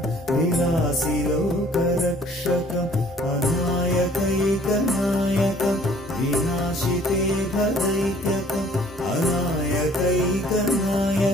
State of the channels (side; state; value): both; normal; correlation 0.56